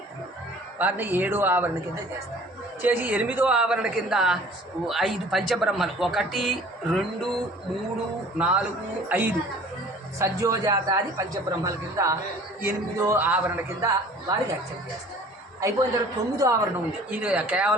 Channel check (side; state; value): both; normal; correlation 0.49